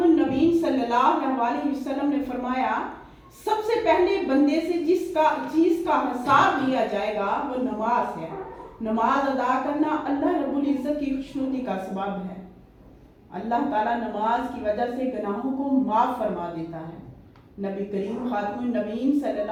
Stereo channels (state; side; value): identical; both; correlation 1.00